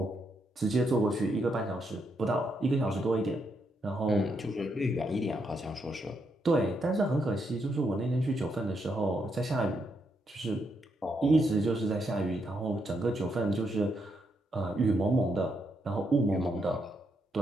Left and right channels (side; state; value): both; normal; correlation 0.79